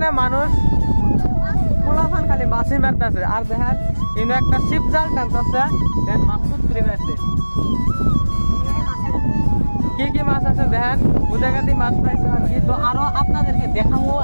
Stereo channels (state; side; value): inverted; both; correlation -1.00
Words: মানুষ পোলাফান খালি মাছি মারতেছে। আর দেখেন ইনো একটা শিপ জাল টানতেছে, দেন মাছ তুলে আছে। কি কি মাছ আছে দেখেন, বুঝাগাতি মাছ পাইছে আর কি। তো আরো আপনাদেরকে দেখাবো,